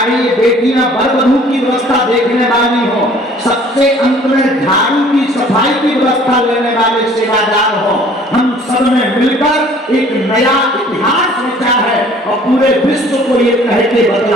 ये बेटियां वर वधू की व्यवस्था देखने वाली हो, सबसे अंत में झाड़ू की सफाई की व्यवस्था लेने वाले सेवादार हो, हम सब ने मिलकर एक नया इतिहास रचा है और पूरे विश्व को ये कह के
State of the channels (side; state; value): both; normal; correlation 0.53